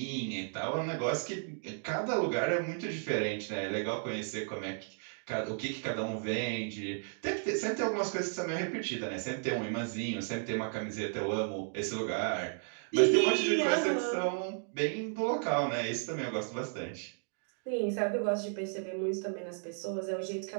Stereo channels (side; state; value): left; silent; 55 dB below the other